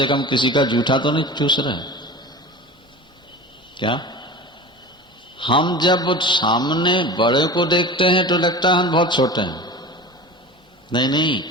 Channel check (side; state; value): both; normal; correlation 0.33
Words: कम किसी का जूठा तो नहीं चूस रहे। क्या हम जब सामने बड़े को देखते हैं तो लगता है हम बहुत छोटे हैं। नहीं नहीं,